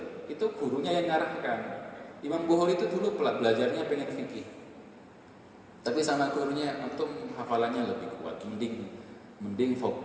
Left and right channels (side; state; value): both; identical; correlation 1.00